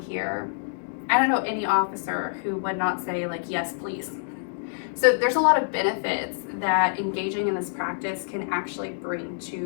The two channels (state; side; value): silent; right; digital silence